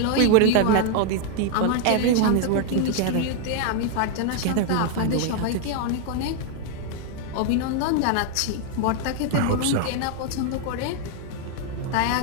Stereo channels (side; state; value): both; different; correlation 0.00